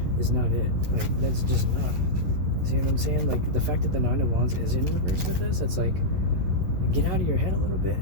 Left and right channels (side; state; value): left; late; 11 ms